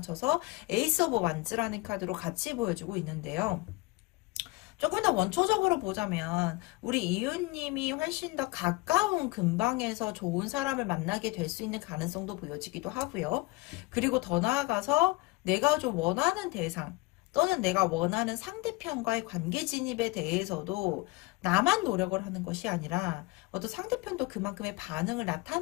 에이스 오브 완즈라는 카드로 같이 보여주고 있는데요. 조금 더 원초적으로 보자면 우리 이웃님이 훨씬 더 가까운 근방에서 좋은 사람을 만나게 될 수 있는 가능성도 보여지기도 하고요. 그리고 더 나아가서 내가 좀 원하는 대상 또는 내가 원하는 상대편과의 관계 진입에 대해서도 나만 노력을 하는 것이 아니라 어떤 상대편도 그만큼의 반응을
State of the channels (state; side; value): quieter; right; 22.1 dB